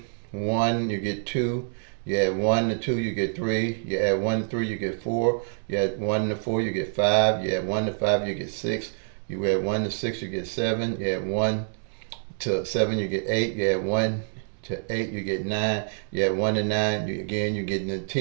1, you get 2. You add 1 to 2, you get 3. You add 1 to 3, you get 4. You add 1 to 4, you get 5. You add 1 to 5, you get 6. You add 1 to 6, you get 7. You add 1 to 7, you get 8. You add 1 to 8, you get 9. You add 1 to 9, you're getting the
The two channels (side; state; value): left; silent; digital silence